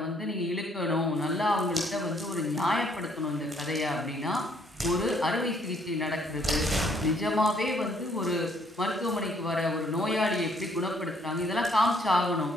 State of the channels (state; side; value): normal; both; correlation 0.66